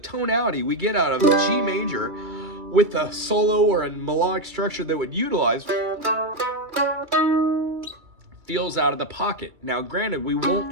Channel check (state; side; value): late; left; 2.3 ms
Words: we get out of G major with a solo or a melodic structure that would utilize feels out of the pocket. Now, granted, we won't